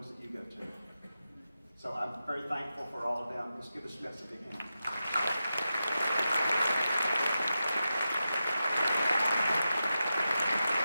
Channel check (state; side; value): inverted; both; correlation -0.91